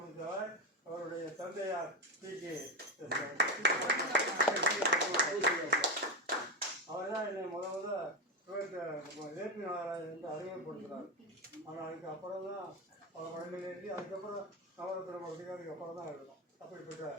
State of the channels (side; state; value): both; normal; correlation 0.15